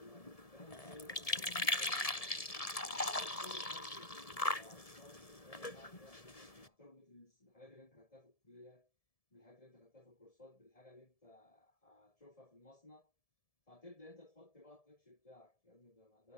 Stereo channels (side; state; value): right; late; 1.7 ms